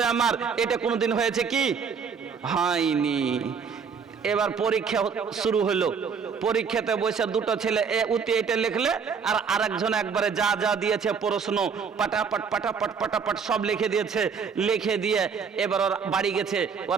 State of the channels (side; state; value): left; quieter; 6.1 dB